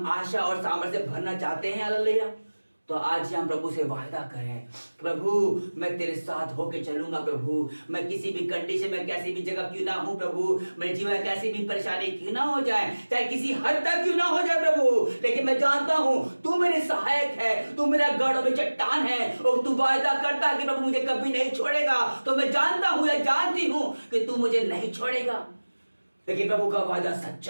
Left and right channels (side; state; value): both; inverted; correlation -1.00